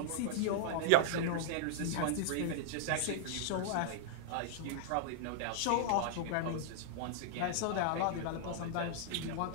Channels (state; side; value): different; both; correlation -0.01